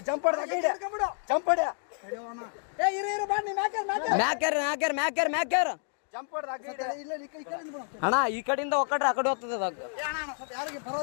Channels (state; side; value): silent; right; 58 dB below the other